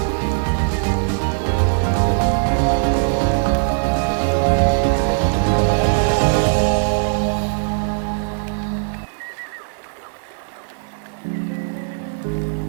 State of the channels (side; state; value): left; silent; digital silence